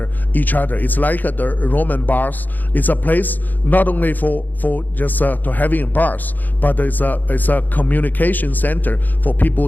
each other. It's like the Roman bars. It's a place not only for just to having bars, but it's a communication center for people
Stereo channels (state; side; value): late; right; 0.085 ms